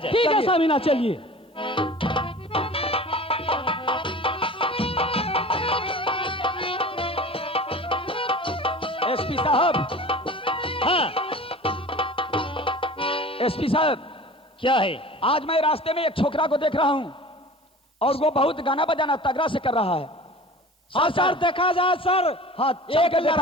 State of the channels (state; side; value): normal; both; correlation 0.40